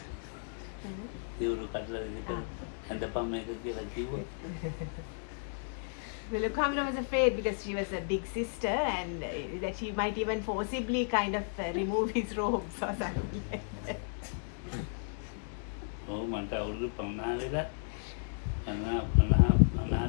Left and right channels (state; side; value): silent; right; digital silence